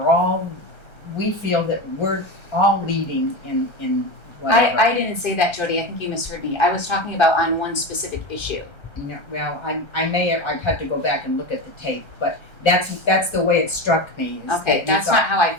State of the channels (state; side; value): late; right; 1.3 ms